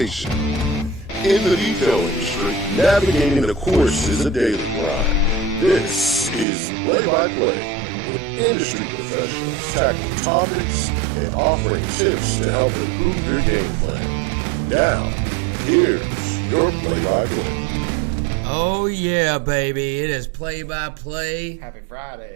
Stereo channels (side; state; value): left; drops out; at 6.5 s